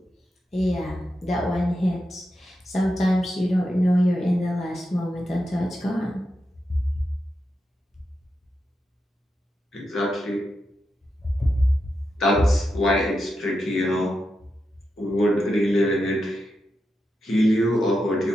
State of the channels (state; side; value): normal; both; correlation 0.87